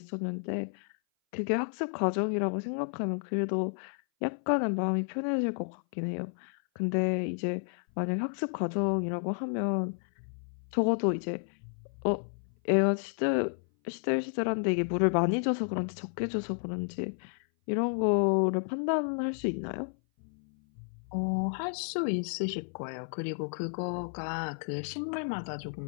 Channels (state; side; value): silent; right; 57 dB below the other